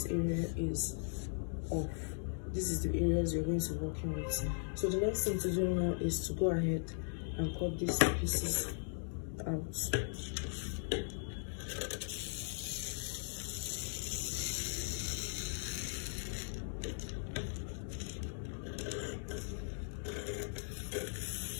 area is off. This is the areas you're going to be working with. So the next thing to do now is to go ahead and cut these pieces out.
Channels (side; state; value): right; silent; digital silence